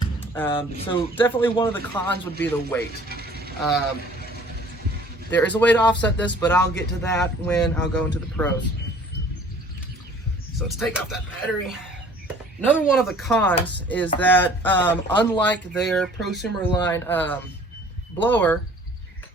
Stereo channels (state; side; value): normal; both; correlation 0.51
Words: So definitely one of the cons would be the weight. There is a way to offset this, but I'll get to that when I'll go into the pros. So let's take off that battery. Another one of the cons is that unlike their prosumer line blower,